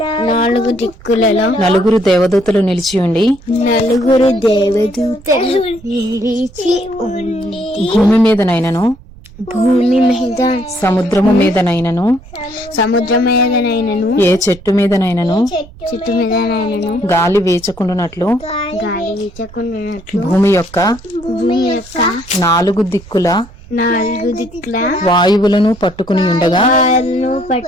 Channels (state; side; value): noise; right; rumble, 21 dB below the sound